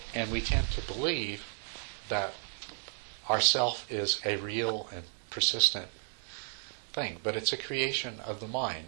and we tend to believe that our self is a real and persistent thing, but it's a creation of the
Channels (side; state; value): left; silent; 55 dB below the other